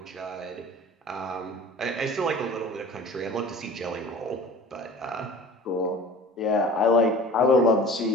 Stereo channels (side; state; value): both; normal; correlation 0.41